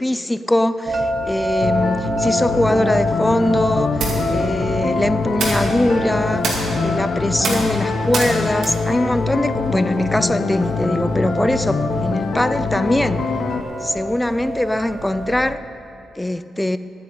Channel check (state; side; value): normal; both; correlation 0.90